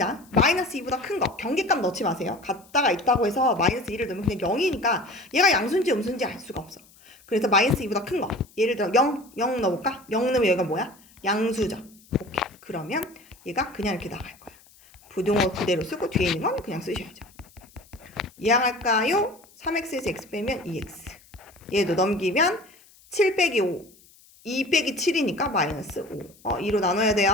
마이너스 2보다 큰 거 경계값 넣지 마세요. 같다가 있다고 해서 마이너스 2를 넣으면 그냥 0이니까 얘가 양수인지 음수인지 알 수가 없어. 그래서 마이너스 2보다 큰 거 예를 들어 0 넣어볼까? 0 넣으면 얘가 뭐야? 양수죠. 오케이. 그러면 얘가 그냥 이렇게 나갈 거야. 부등호 그대로 쓰고 뒤에 있는 건 그냥 쓰셔야죠. 이항할까요? 3x에서 x 빼면 2x. 얘도 넘기면 7 빼기 5. 2 빼기 7이니까 마이너스 5. 2로 나눠야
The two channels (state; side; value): noise; left; hiss, 27 dB below the sound